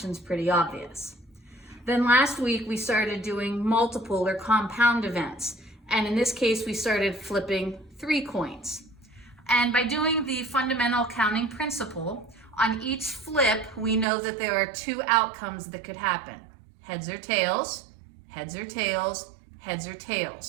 pretty obvious. Then last week we started doing multiple or compound events, and in this case we started flipping 3 coins. And by doing the fundamental counting principle, on each flip we know that there are 2 outcomes that could happen. Heads or tails, heads or tails, heads or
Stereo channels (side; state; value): left; drops out; at 14.1 s